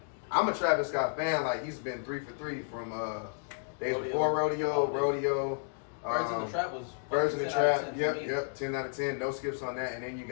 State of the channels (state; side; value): silent; right; digital silence